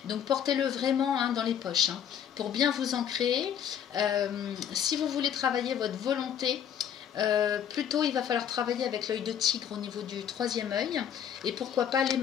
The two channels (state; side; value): quieter; right; 9.0 dB